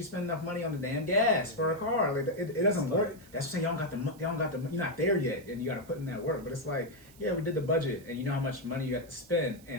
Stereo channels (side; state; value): right; noise; hiss, 24 dB below the sound